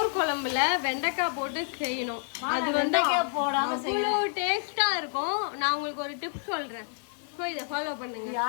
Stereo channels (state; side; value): silent; right; 56 dB below the other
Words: குழம்புல வெண்டைக்காய் போட்டு செய்யணும். அது வெண்டைக்காய் போடாம அவ்வளவு டேஸ்டா இருக்கும். நான் உங்களுக்கு ஒரு டிப் சொல்றேன், இதை ஃபாலோ பண்ணுங்க.